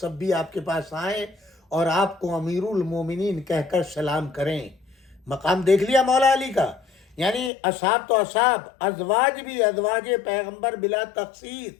بھی آپ کے پاس آئیں اور آپ کو امیر المومنین کہہ کر سلام کریں. مقام دیکھ لیا مولا علی کا, یعنی اصحاب تو اصحاب, ازواج بھی, ازواج پیغمبر بلا تخصیص,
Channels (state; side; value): drops out; right; at 7.5 s